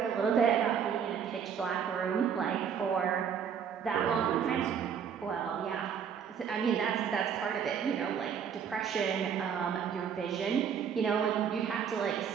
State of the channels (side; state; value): left; quieter; 7.6 dB